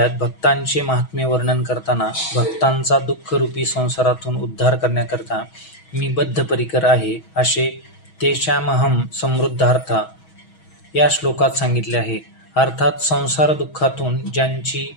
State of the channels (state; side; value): late; right; 6.2 ms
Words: भक्तांचे महात्म्य वर्णन करताना भक्तांचा दुःखरूपी संसारातून उद्धार करण्याकरता मी बद्धपरिकर आहे असे तेषामहम समृद्धार्था या श्लोकात सांगितले आहे. अर्थात संसार दुःखातून ज्यांची